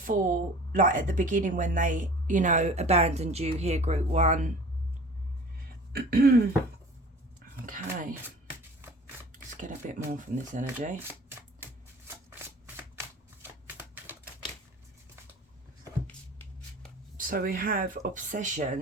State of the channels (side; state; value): both; normal; correlation 0.43